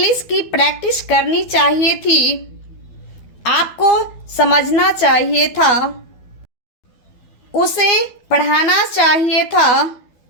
की प्रैक्टिस करनी चाहिए थी, आपको समझना चाहिए था, उसे पढ़ाना चाहिए था,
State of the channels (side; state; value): right; late; 12 ms